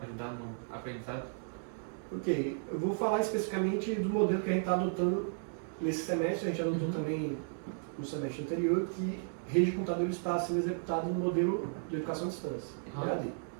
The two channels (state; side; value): silent; left; digital silence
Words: ajudar no aprendizado? Ok, eu vou falar especificamente do modelo que a gente está adotando nesse semestre, a gente adotou também no semestre anterior, que rede de computadores está sendo executado no modelo de educação à distância, EAD.